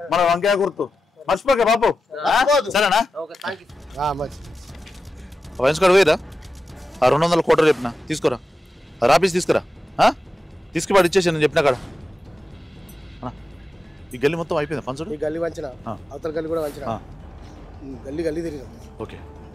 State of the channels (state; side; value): normal; both; correlation 0.92